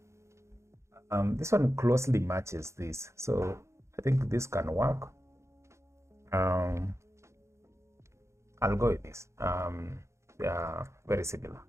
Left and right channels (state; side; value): late; left; 0.14 ms